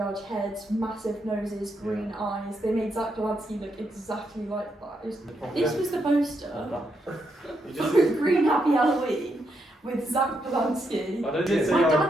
heads, massive noses, green eyes. They made Zach Polanski look exactly like that. This was the poster. Green Happy Halloween. with Zach Polanski. I don't Did think say My I-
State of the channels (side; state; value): both; normal; correlation 0.80